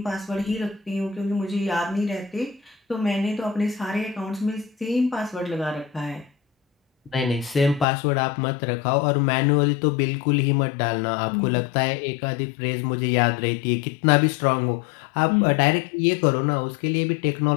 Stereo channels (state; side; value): drops out; right; at 7.9 s